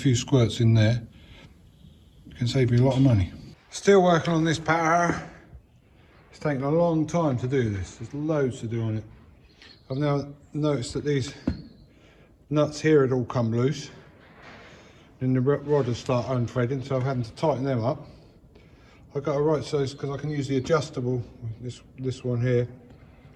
squirts in there, it can save you a lot of money. Still working on this power harrow. It's taken a long time to do this. There's loads to do on it. I've now noticed that these nuts here had all come loose, and the rod has started unthreading, so I've had to tighten them up. I've got a right size because I can use the adjustable, this one here,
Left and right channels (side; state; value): both; identical; correlation 1.00